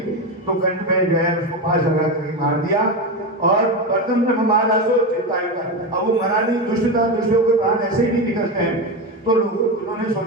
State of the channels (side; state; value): both; normal; correlation 0.16